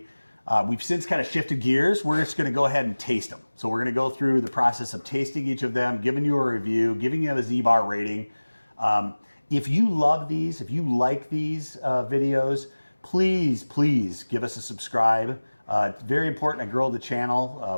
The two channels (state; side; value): inverted; both; correlation -1.00